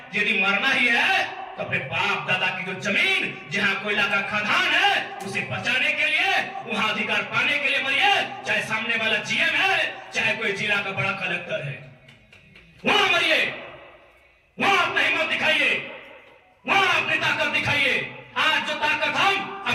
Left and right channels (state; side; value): identical; both; correlation 1.00